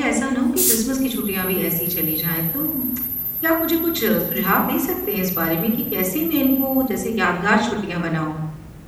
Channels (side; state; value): both; identical; correlation 1.00